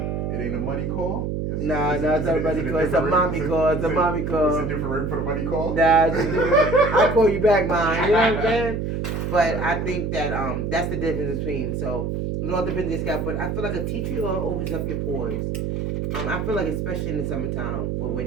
It ain't a money call? No, it's not a money call. It's a mommy call. It's a mommy call. Is it different rate for the money call? Nah, it's different. I'll call you back, mine. You know what I'm saying? But I think that that's the difference between. So it all depends on your scalp. But I feel like a tea tree oil opens up your pores. I feel like especially in the summertime where we're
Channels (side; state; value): right; noise; hum, 2 dB below the sound